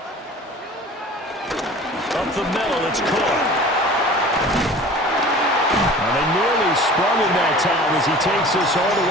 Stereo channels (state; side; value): normal; both; correlation 0.42